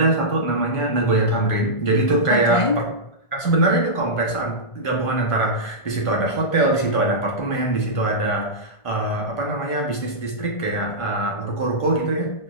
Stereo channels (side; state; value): right; late; 1.5 ms